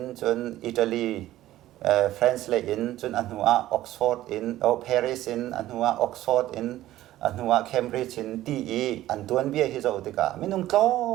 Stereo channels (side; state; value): left; quieter; 14.6 dB